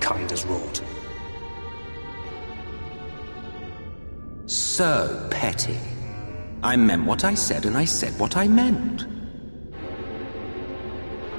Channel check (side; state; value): both; inverted; correlation -1.00